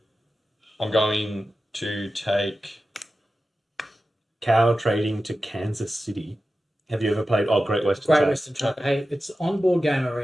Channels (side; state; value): both; normal; correlation 0.93